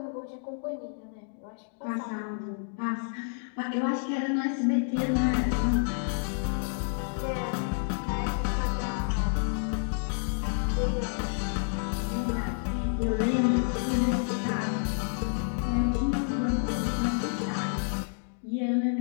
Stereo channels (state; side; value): silent; right; digital silence